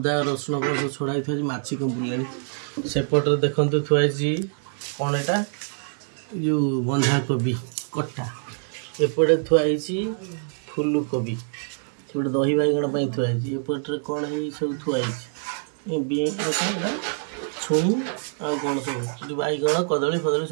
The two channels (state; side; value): silent; left; digital silence